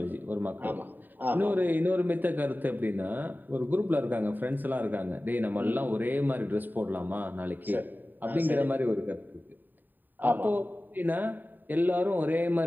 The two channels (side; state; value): left; late; 0.090 ms